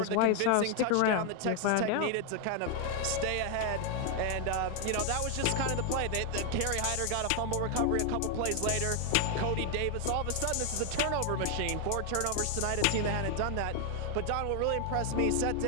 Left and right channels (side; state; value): both; different; correlation 0.00